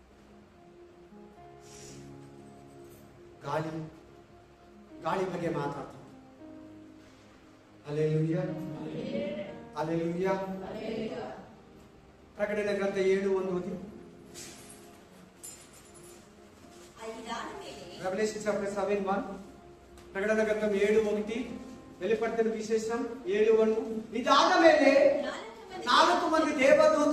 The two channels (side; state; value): both; identical; correlation 1.00